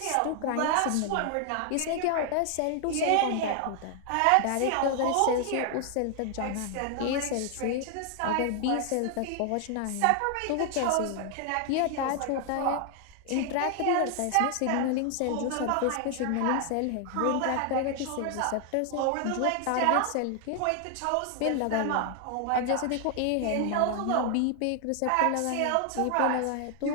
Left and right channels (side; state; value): both; different; correlation 0.00